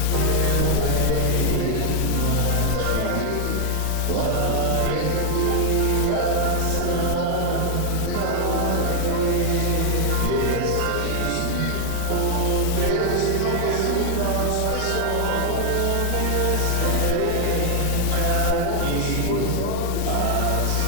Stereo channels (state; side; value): different; both; correlation 0.00